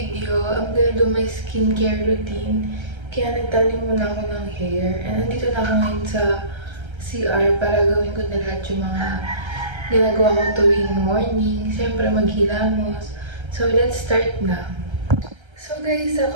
I'm gonna do my skincare routine. Kaya nagtanim muna ako ng hair. And nandito na ako ngayon sa CR para gawin ko na lahat yung mga ginagawa ko tuwing morning. Siyempre maghilamos. So let's start na. So guys, sa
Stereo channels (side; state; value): left; late; 1.3 ms